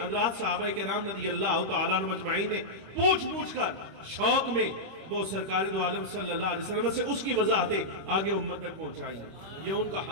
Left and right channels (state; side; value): late; left; 26 ms